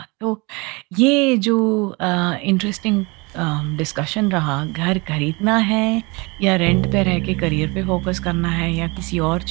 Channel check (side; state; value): left; quieter; 26.9 dB